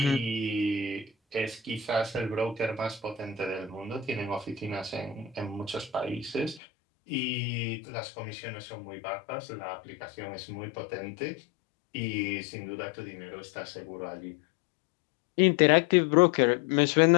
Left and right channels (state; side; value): drops out; right; at 6.6 s